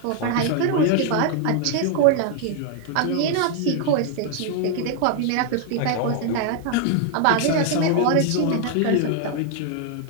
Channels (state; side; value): different; both; correlation 0.00